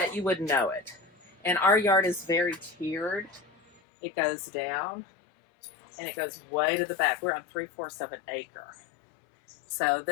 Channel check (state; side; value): drops out; right; at 3.8 s